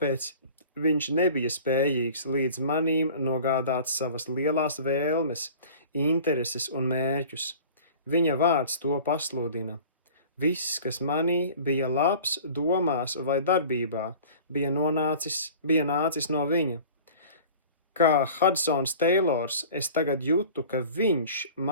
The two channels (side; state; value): both; inverted; correlation -0.43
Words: viņš nebija spējīgs līdz manīm nogādāt savas lielās vēlmes, intereses un mērķus. Viņa vārds to pasludina. Viss, kas manī bija labs domās vai darbībā, bija nācis no viņa. Kā Hudsons Teilors, es tagad jūtu, ka viņš